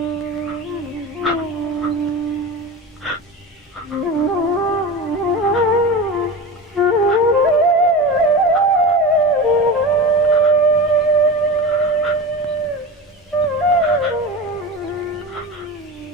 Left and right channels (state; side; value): normal; both; correlation 0.28